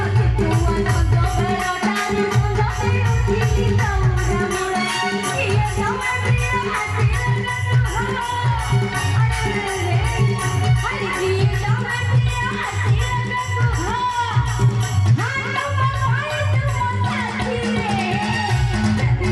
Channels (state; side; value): identical; both; correlation 1.00